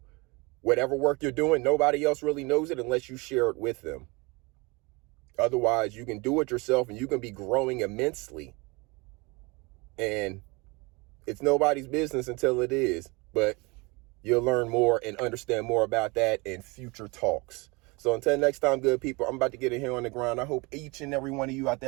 whatever work you're doing, nobody else really knows it unless you share it with them. Otherwise, you can do it yourself and you can be growing immensely. And it's nobody's business until it is. But you'll learn more and understand more about that in future talks. So until next time, good people, I'm about to get in here on the ground. I hope each and every one of you out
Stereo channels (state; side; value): quieter; left; 26.7 dB